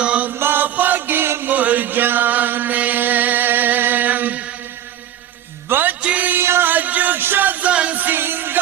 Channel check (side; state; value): left; quieter; 11.1 dB